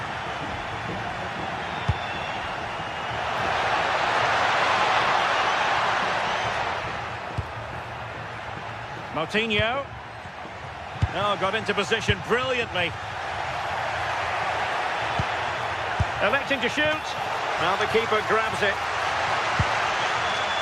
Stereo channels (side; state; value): both; identical; correlation 1.00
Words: Moutinho. Oh, got into position brilliantly. Electing to shoot. Now the keeper grabs it.